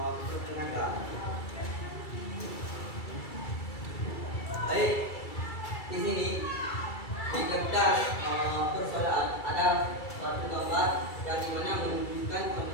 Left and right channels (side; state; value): right; late; 2.3 ms